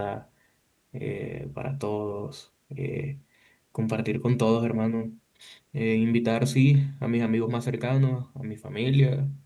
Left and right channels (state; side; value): identical; both; correlation 1.00